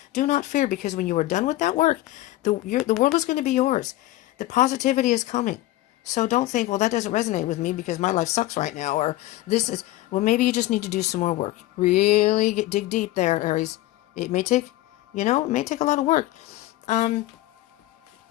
Do not fear, because when you are done with that work, the world is going to be yours. The positivity is coming. So don't think, well, that doesn't resonate with me because my life sucks right now. Or this is, well, maybe you just need to do some more work. Really dig deep there, Aries. It may take, it may take a lot of work. A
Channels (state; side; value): quieter; right; 16.8 dB